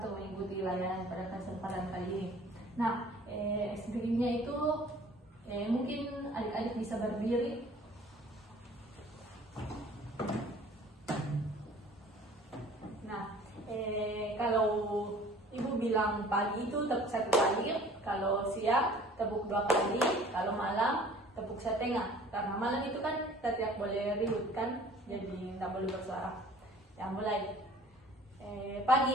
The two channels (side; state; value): both; normal; correlation 0.50